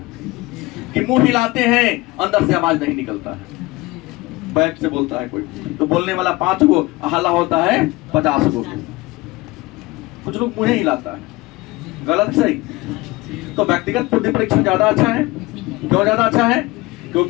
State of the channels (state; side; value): quieter; right; 21.2 dB